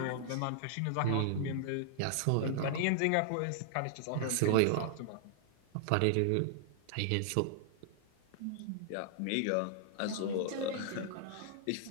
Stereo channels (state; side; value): different; both; correlation -0.01